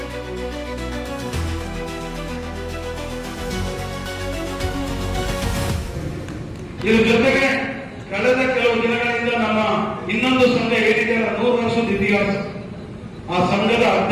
ಜೊತೆಗೆ ಕಳೆದ ಕೆಲವು ದಿನಗಳಿಂದ ನಮ್ಮ ಇನ್ನೊಂದು ಸಂಘ ಏನಿದೆ 100 ವರ್ಷದ ಇತಿಹಾಸ, ಆ ಸಂಘದ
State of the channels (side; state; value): both; identical; correlation 1.00